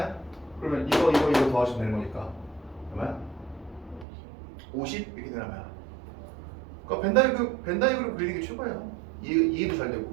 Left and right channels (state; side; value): drops out; left; at 4.0 s